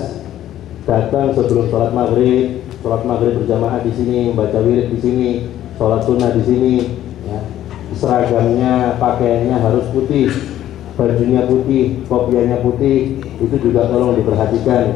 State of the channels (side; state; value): right; quieter; 12.4 dB